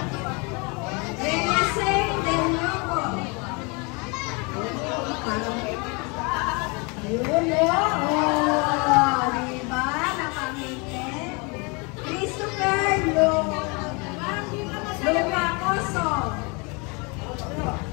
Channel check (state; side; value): quieter; right; 30.3 dB